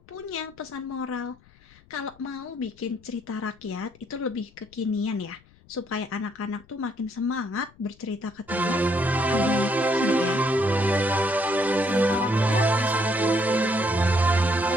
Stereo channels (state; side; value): noise; left; rumble, 28 dB below the sound